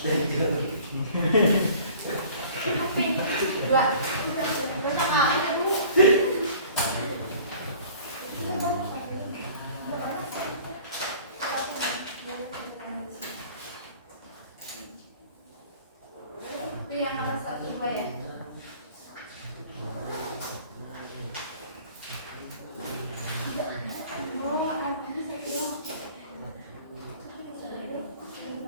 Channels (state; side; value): inverted; both; correlation -0.49